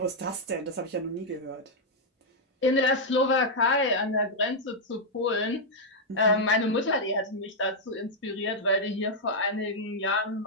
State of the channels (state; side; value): normal; both; correlation -0.04